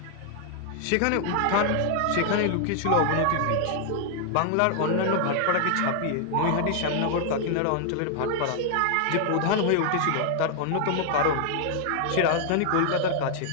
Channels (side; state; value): both; different; correlation 0.00